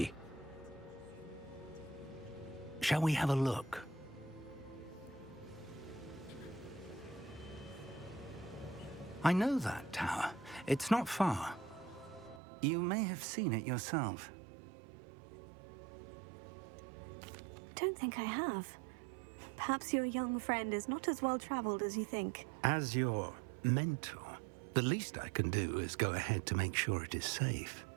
Shall we have a look? I know that tower. It's not far. You may have seen it yourself. Don't think I have. Perhaps your young friend is not as well traveled as you think. As your mentor, the least I can do is go ahead to make sure it is safe.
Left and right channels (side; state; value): left; drops out; at 12.4 s